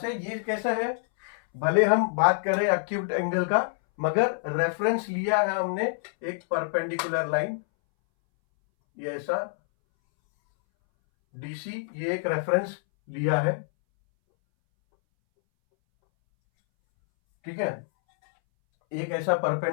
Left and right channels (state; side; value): silent; right; 60 dB below the other